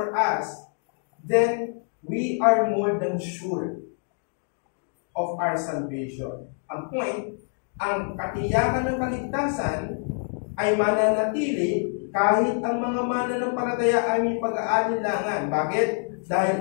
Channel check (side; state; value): right; silent; 61 dB below the other